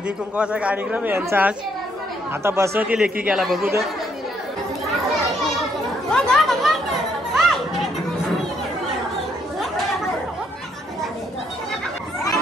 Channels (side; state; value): both; normal; correlation 0.72